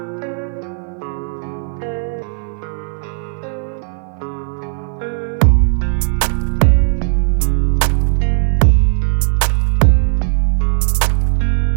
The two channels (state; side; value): silent; left; 57 dB below the other